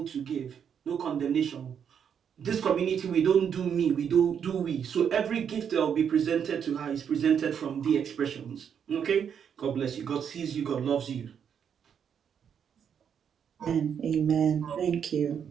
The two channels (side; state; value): left; quieter; 7.9 dB